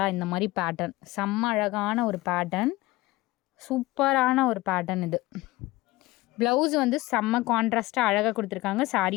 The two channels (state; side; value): quieter; right; 19.5 dB